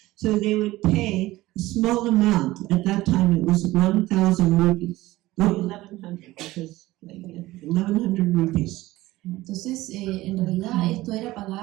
So they would pay a small amount. At that time it was 1,000 rupees. No, 1,100 because 1,100 rupees. Entonces, en realidad esto era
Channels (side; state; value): left; quieter; 17.7 dB